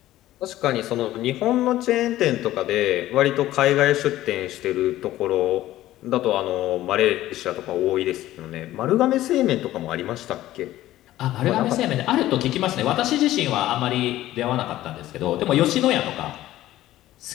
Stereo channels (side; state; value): right; quieter; 14.8 dB